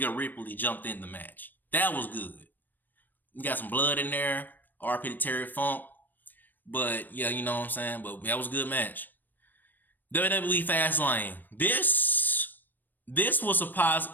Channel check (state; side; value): late; right; 0.090 ms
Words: Ripley jumped in the match. That was good. You got some blood in there. RP to Terry Funk. But yeah, you know what I'm saying? But that was a good match. WWE Fastlane. This was